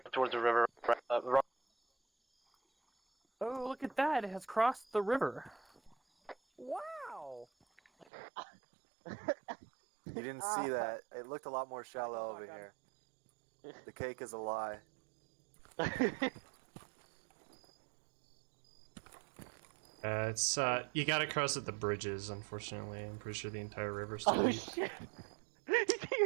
towards the river. Oh, look at that! It has crossed the river. Wow! You didn't see that. It looked a lot more shallow over here. The cake is a lie. It's you gotta cross at the bridges. Unfortunately, I'm pretty sure the entire river's still Oh deep. shit! He's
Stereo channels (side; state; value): left; drops out; at 8.1 s